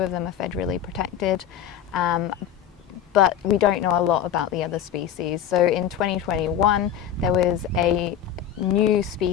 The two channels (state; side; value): quieter; right; 9.5 dB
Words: them are federally protected, but we don't know a lot about the other species. So in 2021 there was a new